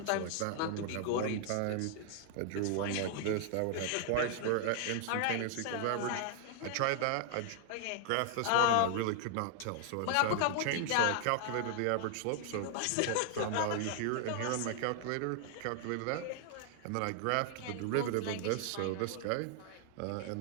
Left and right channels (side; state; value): both; different; correlation 0.00